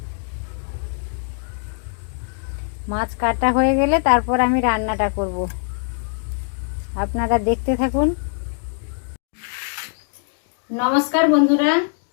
মাছ কাটা হয়ে গেলে তারপর আমি রান্নাটা করব, আপনারা দেখতে থাকুন। নমস্কার বন্ধুরা,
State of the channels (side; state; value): right; silent; digital silence